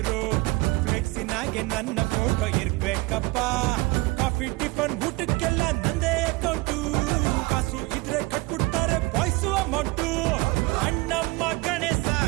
ಫ್ಲೆಕ್ಸಿನಾಗೆ ನನ್ನ ಫೋಟೋ ಇರ್ಬೇಕಪ್ಪ. ಕಾಫಿ ಟಿಫನ್ ಊಟಕ್ಕೆಲ್ಲ ನಂದೇ ಅಕೌಂಟು, ಕಾಸು ಇದ್ರೆ ಕಟ್ಬಿಡ್ತಾರೆ ಬಾಯ್ಸು ಅಮೌಂಟು. ಅಣ್ಣಮ್ಮ ಗಣೇಶ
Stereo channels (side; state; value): left; quieter; 23.3 dB